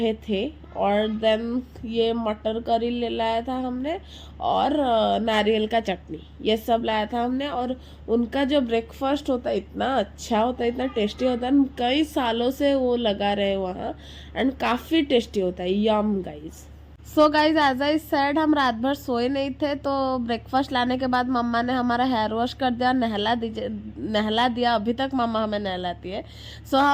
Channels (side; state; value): both; identical; correlation 1.00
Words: थे। और देन ये मटर करी ले लाया था हमने, और नारियल का चटनी, ये सब लाया था हमने। और उनका जो ब्रेकफास्ट होता है इतना अच्छा होता है, इतना टेस्टी होता है। कई सालों से वो लगा रहे वहाँ, एंड काफ़ी टेस्टी होता है। Yum guys. So guys, as I said, हम रात भर सोए नहीं थे, तो ब्रेकफास्ट लाने के बाद मम्मा ने हमारा हेयर वॉश कर दिया, नहला दिया। अभी तक मम्मा हमें नहलाती है। सो